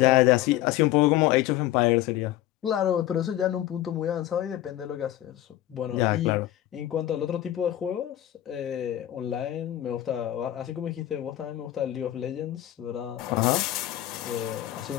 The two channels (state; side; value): quieter; right; 13.7 dB